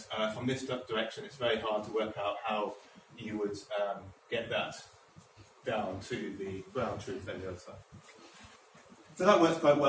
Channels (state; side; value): identical; both; correlation 1.00